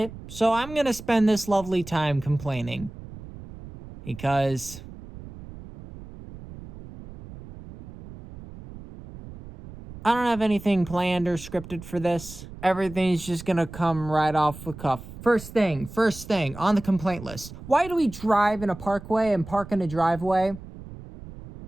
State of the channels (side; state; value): right; noise; rumble, 15 dB below the sound